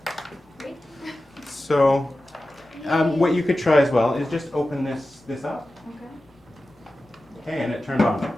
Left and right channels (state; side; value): normal; both; correlation 0.94